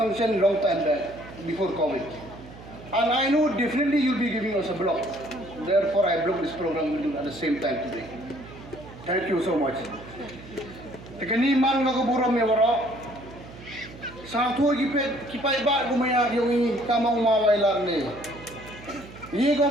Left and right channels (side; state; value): right; noise; hum, 17 dB below the sound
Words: long time back before COVID. And I know definitely you'll be giving us a block. Therefore, I block this program with you at the same time today. Thank you so much. Tekani man ngakaburam ya waro. Satu kipai ba gumaya yung kamang mawailar ni. Ye ko